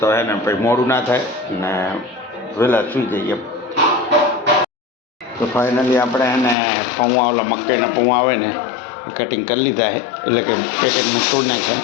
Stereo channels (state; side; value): drops out; right; at 6.6 s